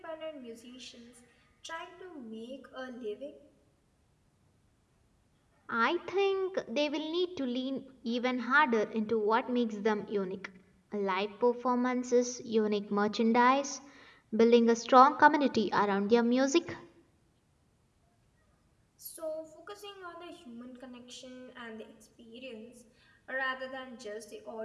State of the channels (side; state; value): both; identical; correlation 1.00